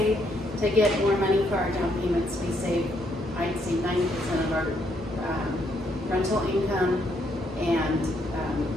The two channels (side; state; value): both; normal; correlation 0.73